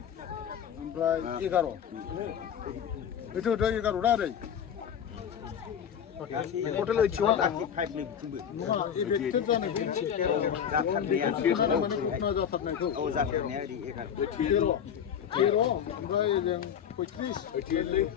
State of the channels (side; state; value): right; quieter; 8.5 dB